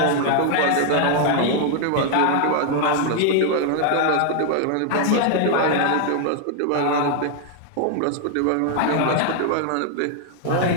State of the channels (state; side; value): different; both; correlation 0.00